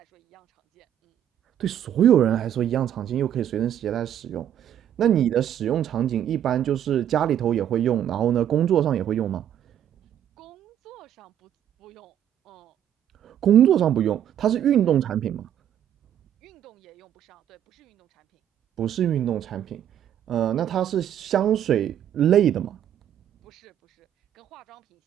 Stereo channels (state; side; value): quieter; left; 10.2 dB